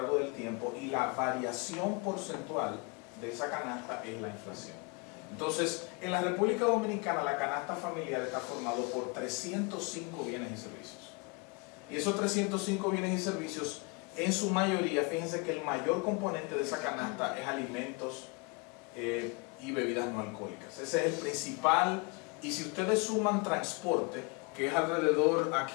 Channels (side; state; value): right; quieter; 30.5 dB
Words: del tiempo y la variación porcentual de esa canasta es la inflación. Entonces, en la República Dominicana la canasta familiar está formada por 305 bienes y servicios. Y esos 305 bienes y servicios, en su mayoría, fíjense que el mayor componente de esa canasta es alimentos y bebidas no alcohólicas. Ese es el principal. Y si ustedes suman transporte, que es alrededor,